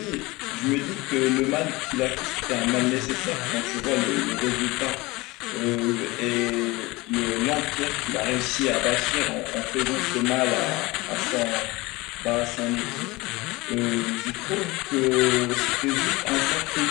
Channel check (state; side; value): quieter; right; 22.3 dB